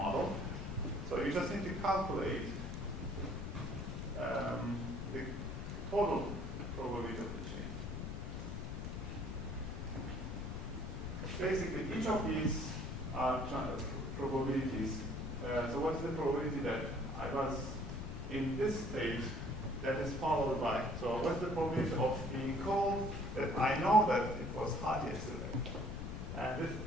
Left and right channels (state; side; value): noise; left; rumble, 5 dB below the sound